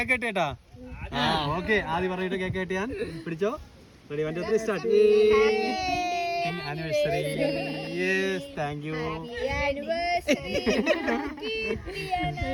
കട്ടിയേട്ടാ. ഓക്കെ, ആദ്യം പറഞ്ഞിട്ട് കേക്ക് കട്ടിയാൻ പിടിച്ചോ. Ready, 1 2 3 start. Anniversary. Yes, thank you.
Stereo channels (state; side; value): identical; both; correlation 1.00